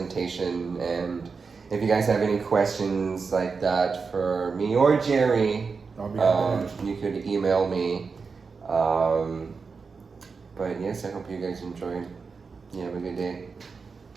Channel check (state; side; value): quieter; left; 5.0 dB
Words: And if you guys have any questions like that for me or Jerry, I'll be happy to answer. you could email me. But yes, I hope you guys enjoyed. You have a good day.